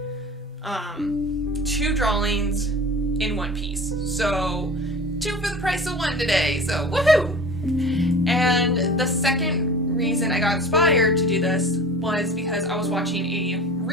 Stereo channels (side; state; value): both; normal; correlation 0.38